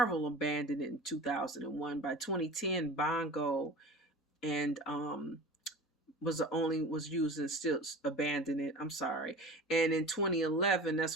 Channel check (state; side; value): normal; both; correlation 0.36